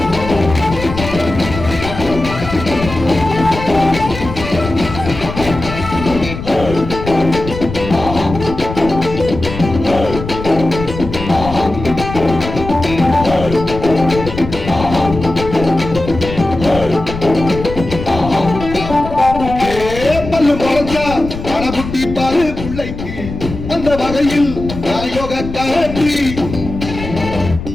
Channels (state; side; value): noise; left; rumble, 9 dB below the sound